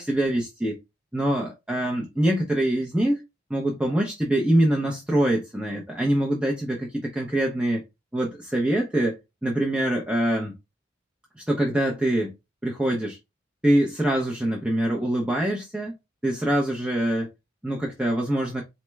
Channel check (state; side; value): normal; both; correlation 0.88